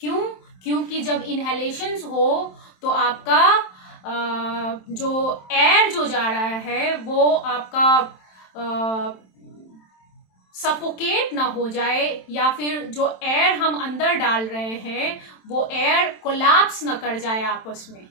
क्योंकि जब इनहेलेशंस हो तो आपका जो एयर जो जा रहा है वो आपका सफोकेट ना हो जाए, या फिर जो एयर हम अंदर डाल रहे हैं वो एयर कोलैप्स ना कर जाए आपस में,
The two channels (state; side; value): late; right; 27 ms